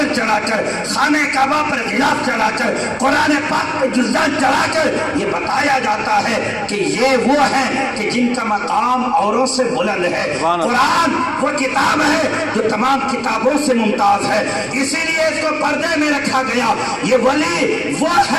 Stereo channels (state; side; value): noise; right; rumble, 24 dB below the sound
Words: چڑھا کر، خانہ کعبہ پر غلاف چڑھا کر، قرآن پاک پہ جزدان چڑھا کر یہ بتایا جاتا ہے کہ یہ وہ ہیں کہ جن کا مقام اوروں سے بلند ہے۔ قرآن وہ کتاب ہے جو تمام کتابوں سے ممتاز ہے، اسی لیے اس کو پردے میں رکھا گیا۔ یہ ولی وہ